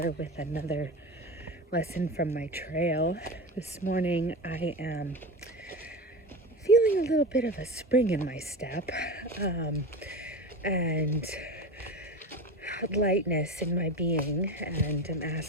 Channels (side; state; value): both; normal; correlation 0.27